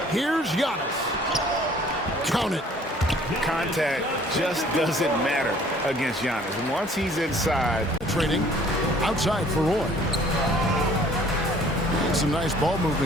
Here's Giannis. Count it. Contact just doesn't matter against Giannis. Once he's inside. Trading outside for Roy. Some nice ball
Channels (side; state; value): both; normal; correlation 0.55